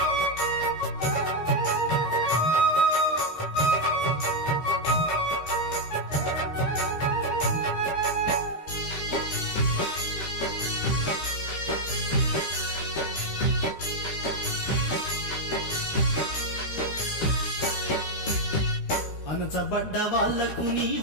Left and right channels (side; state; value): right; late; 13 ms